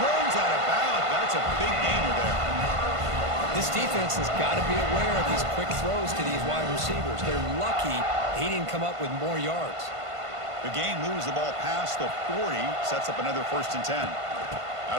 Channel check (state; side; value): late; left; 1.5 ms